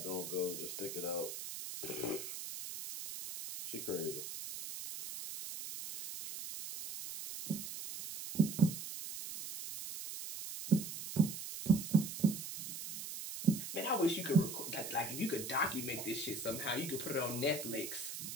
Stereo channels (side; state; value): right; noise; hiss, 7 dB below the sound